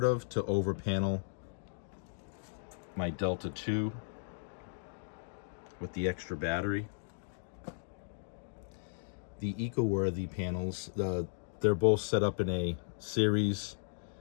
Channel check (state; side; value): silent; right; digital silence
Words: of to over panel my Delta 2 with the extra battery. The eco-worthy panels, they're both set up in a series